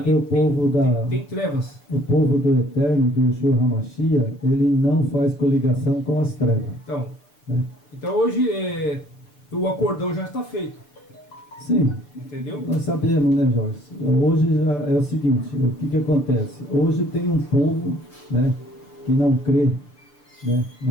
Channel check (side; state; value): right; late; 6.7 ms